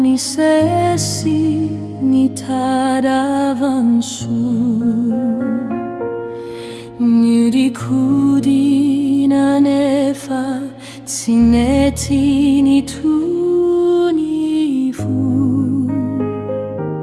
ni sesi ni tadavansu Nirikudi na nefa tsineti ni tunifu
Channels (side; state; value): both; identical; correlation 1.00